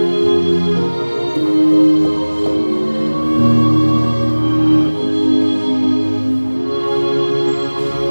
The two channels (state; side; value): inverted; both; correlation -1.00